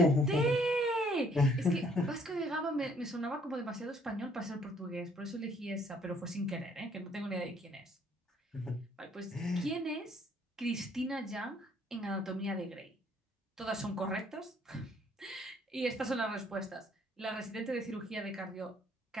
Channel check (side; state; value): both; normal; correlation 0.63